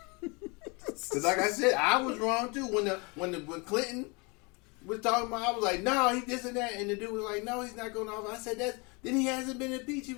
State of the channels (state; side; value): quieter; right; 29.5 dB